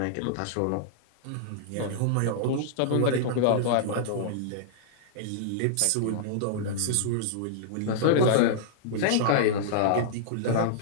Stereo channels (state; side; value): different; both; correlation -0.02